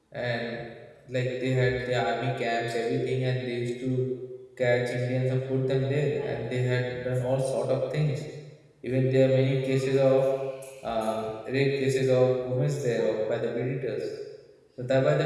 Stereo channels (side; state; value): both; identical; correlation 1.00